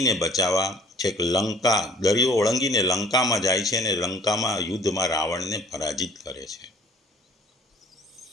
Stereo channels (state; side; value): normal; both; correlation 0.53